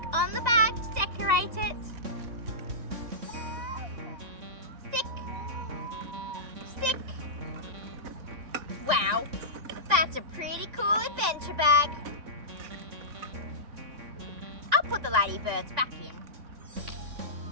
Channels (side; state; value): left; late; 3.5 ms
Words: on the bag to decorate it. Stick. Stick. Wow, that's a pretty cool adventure bag. I'll put the ladybirds back in.